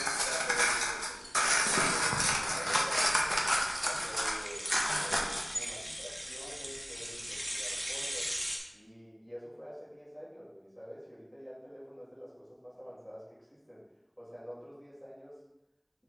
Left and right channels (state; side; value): identical; both; correlation 1.00